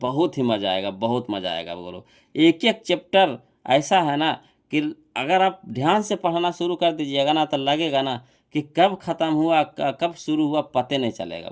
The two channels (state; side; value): identical; both; correlation 1.00